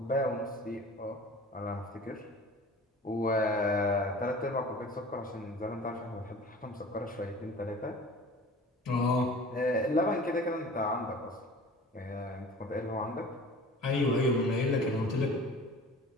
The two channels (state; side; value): normal; both; correlation 0.42